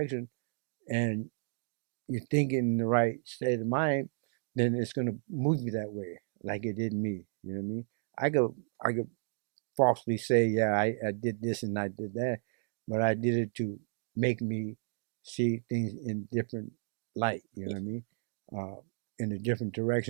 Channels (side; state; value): left; silent; digital silence